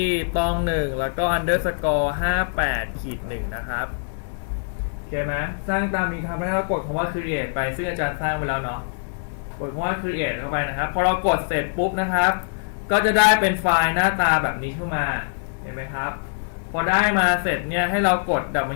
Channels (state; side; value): silent; right; digital silence